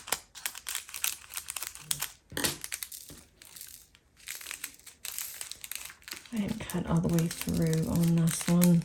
I didn't cut all the way through on this one.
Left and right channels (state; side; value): identical; both; correlation 1.00